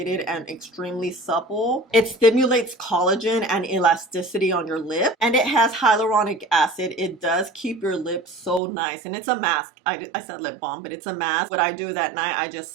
and extremely supple. It stimulates collagen and elasticity on your lip, and it has hyaluronic acid. It does keep your lips so nice, and it's a mask. I said lip balm, but it's a mask. What I do that night, I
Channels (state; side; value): drops out; left; at 8.6 s